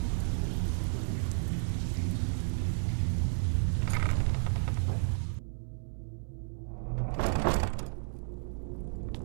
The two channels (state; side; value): silent; left; digital silence